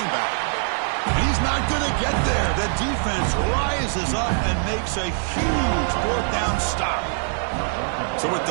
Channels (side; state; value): left; silent; 62 dB below the other